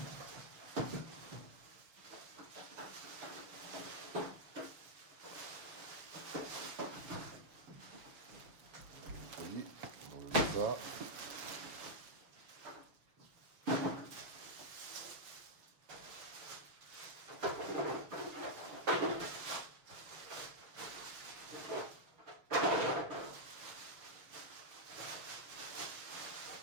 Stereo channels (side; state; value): left; late; 6.7 ms